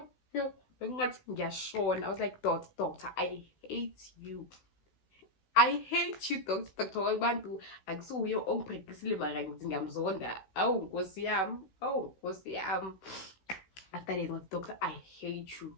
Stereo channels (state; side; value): late; right; 16 ms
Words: Bengathi ngiyashona. I was like, doctor, I hate you, doctor. Abantu akusuye ongibhekisile mara ngithi ngiyamzonda. Awu nkosi yami. After that, doctor, I hate you.